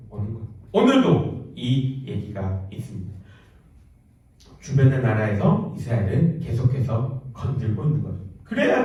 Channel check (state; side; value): identical; both; correlation 1.00